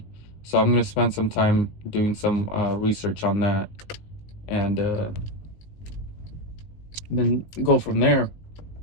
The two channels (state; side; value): late; right; 19 ms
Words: So I'm going to spend some time doing some research on that, and then go from there.